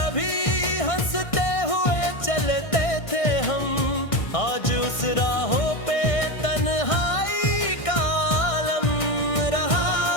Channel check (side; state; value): right; late; 1.6 ms